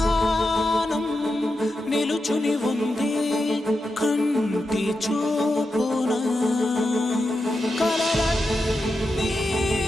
నిలుచుని ఉంది కంటి చూపునా, కలలన్నీ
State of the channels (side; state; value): both; normal; correlation 0.88